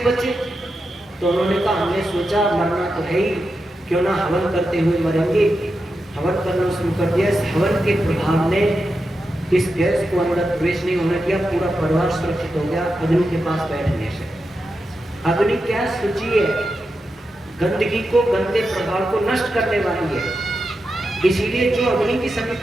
बचे? तो उन्होंने कहा हमने सोचा मरना तो है ही, क्यों ना हवन करते हुए मरेंगे। हवन करना शुरू कर दिया। इस हवन के प्रभाव ने इस गैस को अंदर प्रवेश नहीं होने दिया, पूरा परिवार सुरक्षित हो गया अग्नि के पास बैठने से। अग्नि क्या सूची है, गंदगी को, गंदे प्रभाव को नष्ट करने वाली है। इसीलिए जो अग्नि की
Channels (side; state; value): both; normal; correlation 0.89